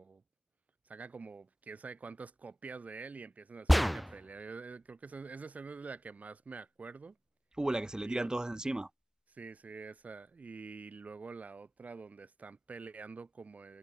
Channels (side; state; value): both; normal; correlation 0.97